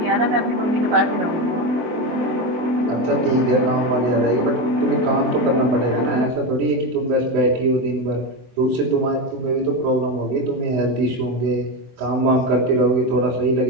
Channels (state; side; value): late; left; 24 ms